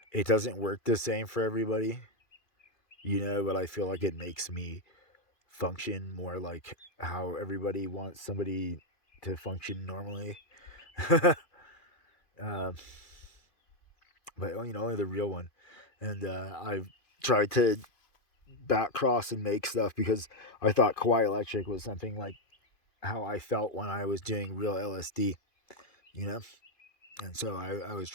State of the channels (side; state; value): right; late; 2.5 ms